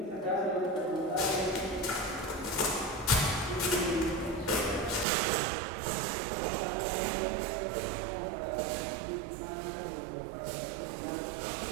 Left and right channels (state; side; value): drops out; left; at 5.1 s